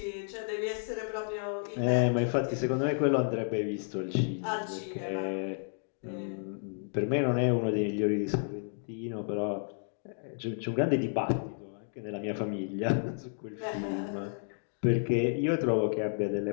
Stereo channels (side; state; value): right; silent; digital silence